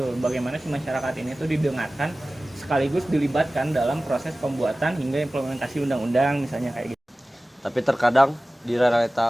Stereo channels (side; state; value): both; normal; correlation 0.97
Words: bagaimana si masyarakat ini tuh didengarkan sekaligus dilibatkan dalam proses pembuatan hingga implementasi undang-undang misalnya kayak gitu. Tapi terkadang di